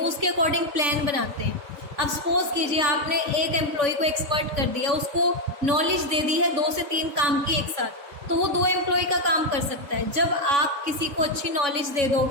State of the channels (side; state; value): left; late; 3.5 ms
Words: उसके अकॉर्डिंग प्लान बनाते हैं। अब सपोज कीजिए आपने एक एम्प्लॉय को एक्सपर्ट कर दिया, उसको नॉलेज दे दी है 2 से 3 काम की एक साथ, तो वो 2 एम्प्लॉय का काम कर सकता है। जब आप किसी को अच्छी नॉलेज दे